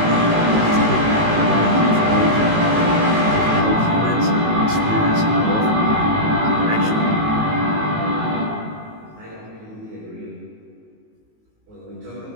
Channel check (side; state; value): left; late; 19 ms